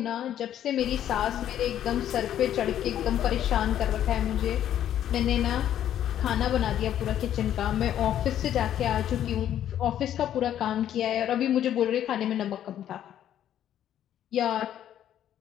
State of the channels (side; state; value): right; quieter; 10.9 dB